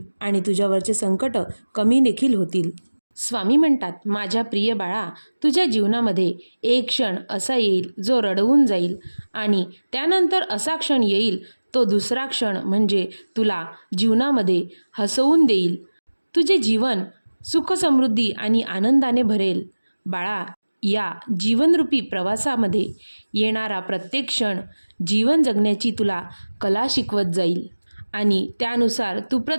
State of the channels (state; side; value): inverted; both; correlation -1.00